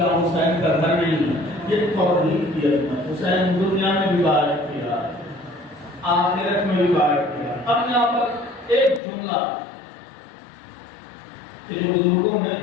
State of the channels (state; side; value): drops out; right; at 9.0 s